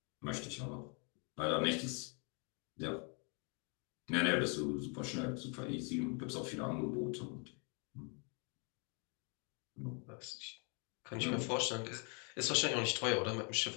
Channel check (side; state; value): right; quieter; 36.3 dB